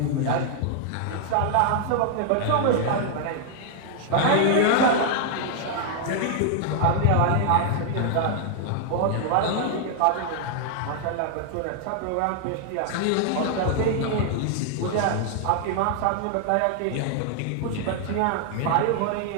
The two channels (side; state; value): both; different; correlation 0.00